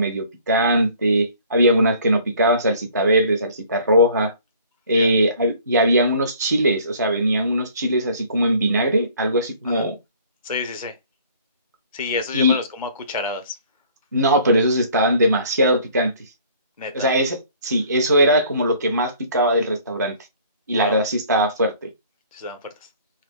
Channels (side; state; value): both; inverted; correlation -0.54